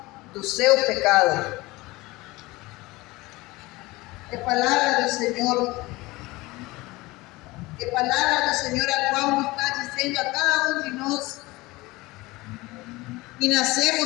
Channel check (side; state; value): right; quieter; 21.2 dB